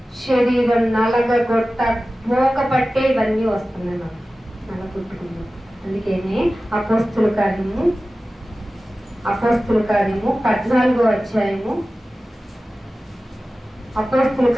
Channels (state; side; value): normal; both; correlation 0.95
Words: శరీరం నలగొట్ట మోక పట్టే ఇవన్నీ వస్తున్నాయి నాకు నలగొట్టుకున్నాం. అందుకనే అపోస్తుల కార్యము 14వ అధ్యాయము, అపోస్తుల